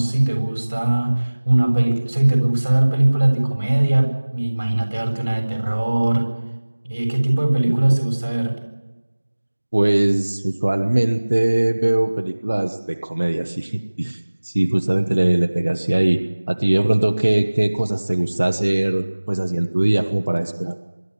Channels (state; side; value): inverted; both; correlation -1.00